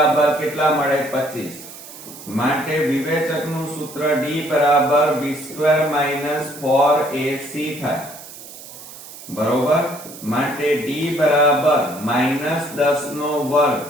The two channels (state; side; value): noise; right; hiss, 16 dB below the sound